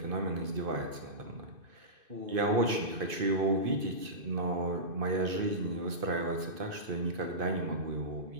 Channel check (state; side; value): late; left; 2.5 ms